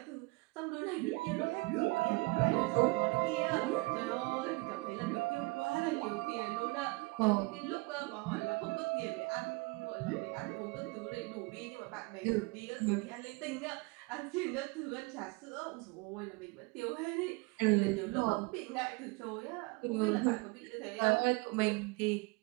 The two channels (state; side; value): quieter; left; 25.4 dB